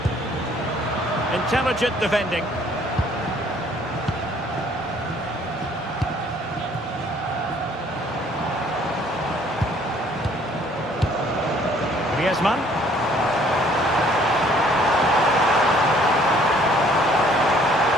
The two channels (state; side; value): normal; both; correlation 0.60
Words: Intelligent defending. Griezmann.